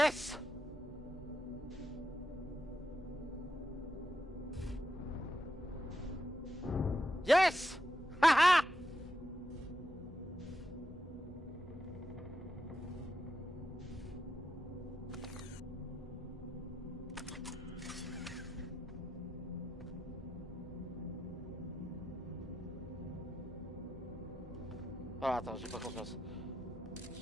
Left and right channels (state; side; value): normal; both; correlation 0.84